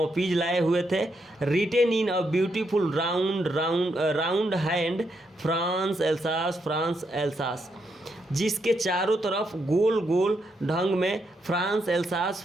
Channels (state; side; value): normal; both; correlation 0.79